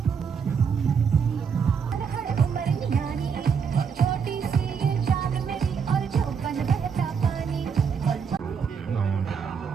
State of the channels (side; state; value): left; quieter; 6.5 dB